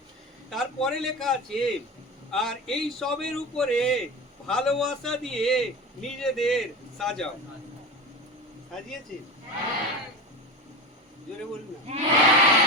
তারপরে লেখা আছে আর এই সবের উপরে ভালোবাসা দিয়ে নিজেদের সাজাও। সাজিয়েছে? জোরে বলুন না।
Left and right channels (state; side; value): normal; both; correlation 0.26